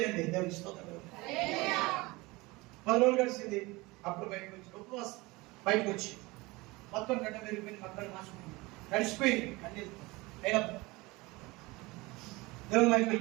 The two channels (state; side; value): quieter; left; 22.8 dB